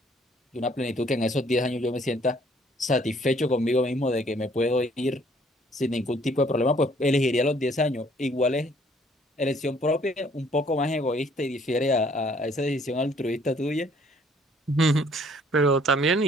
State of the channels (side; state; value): both; normal; correlation 0.61